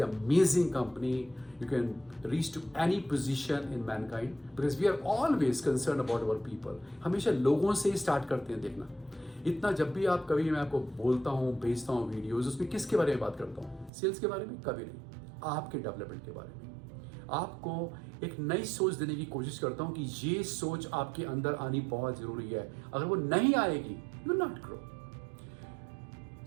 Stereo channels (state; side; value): drops out; left; at 13.9 s